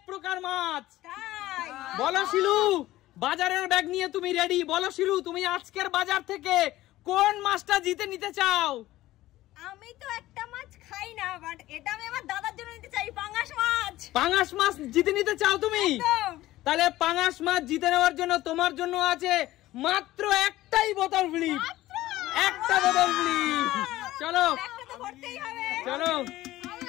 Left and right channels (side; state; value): right; quieter; 16.1 dB